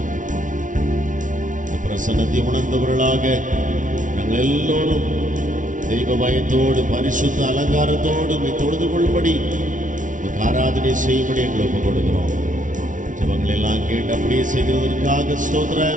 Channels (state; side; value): late; left; 0.37 ms